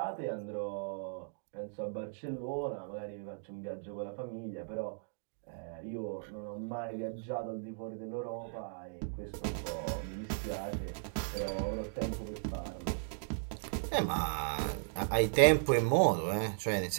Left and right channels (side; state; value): left; silent; digital silence